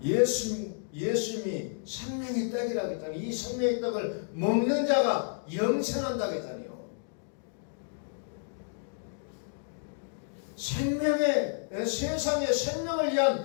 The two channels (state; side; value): silent; right; digital silence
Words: 예수님이 생명의 떡이라고 했잖아요. 이 생명의 떡을 먹는 자가 영생한다고 했잖아요. 세상의 생명을